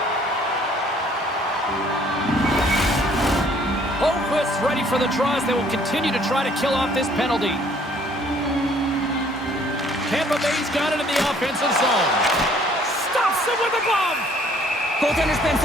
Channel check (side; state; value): both; normal; correlation 0.60